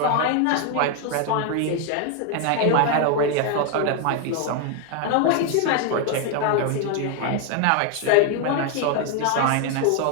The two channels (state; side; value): different; both; correlation 0.01